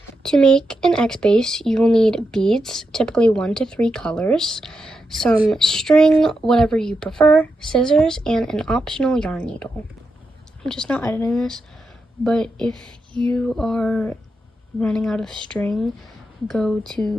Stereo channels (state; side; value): normal; both; correlation 0.86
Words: To make an X base, you will need beads, typically 1 to 3 colors, some string, whatever you prefer, scissors, and an optional yarn needle. I'm just not editing this, but if you are running out of string, go